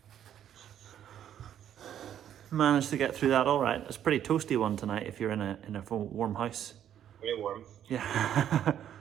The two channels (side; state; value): left; quieter; 10.2 dB